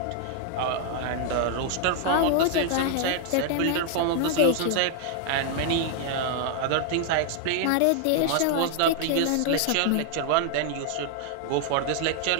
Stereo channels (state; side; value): different; both; correlation 0.00